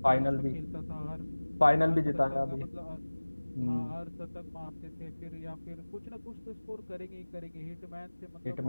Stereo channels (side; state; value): both; inverted; correlation -1.00